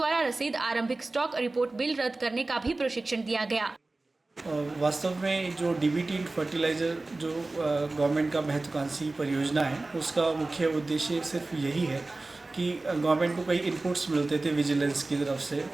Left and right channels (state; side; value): quieter; left; 3.2 dB